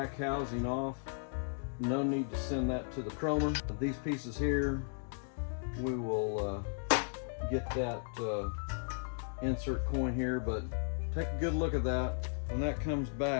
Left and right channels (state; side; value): silent; right; digital silence